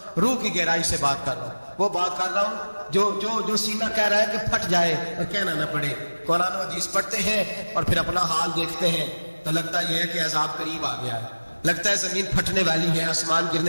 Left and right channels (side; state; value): both; inverted; correlation -1.00